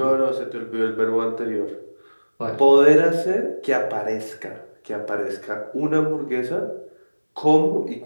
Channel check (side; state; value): both; inverted; correlation -1.00